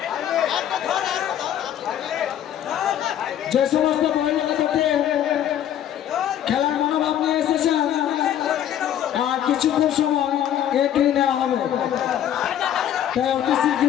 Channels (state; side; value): quieter; right; 10.7 dB